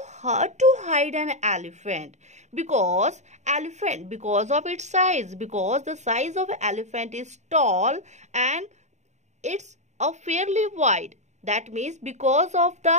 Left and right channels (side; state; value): left; late; 0.34 ms